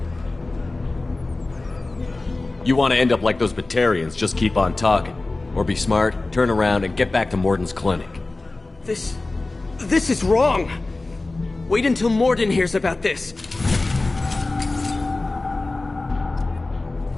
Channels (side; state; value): right; quieter; 3.2 dB